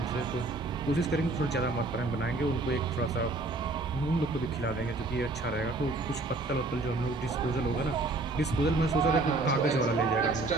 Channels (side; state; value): left; quieter; 3.2 dB